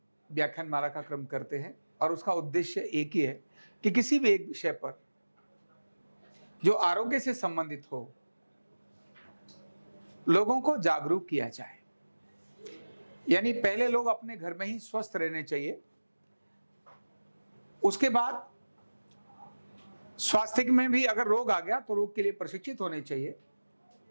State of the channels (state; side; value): inverted; both; correlation -1.00